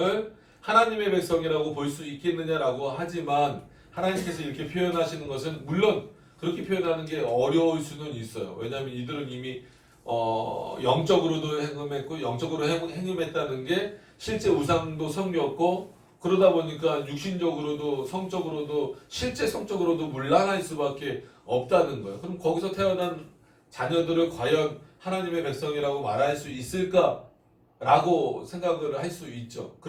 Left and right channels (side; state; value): both; identical; correlation 1.00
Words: 하나님의 백성이라고 볼 수 있겠느냐라고 하지만 하나님께서 이렇게 표현하시는 것은 물론 그렇게 표현하는 게 어려울 수는 있어요. 왜냐하면 이들은 이미 영적으로도 행음했고 영적으로 행음했다는 게 실제 우상도 섬겼고 그러다 보니까 육신적으로도 성적으로도 실제 성적으로도 문란할 수밖에 없다는 거예요. 그럼 거기서 태어난 자녀들을 과연 하나님의 백성이라고 말할 수 있을까라고 생각을 할 수 있죠.